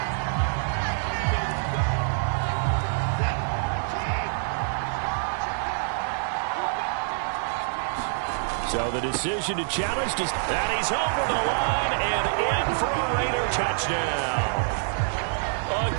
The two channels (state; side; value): silent; left; 61 dB below the other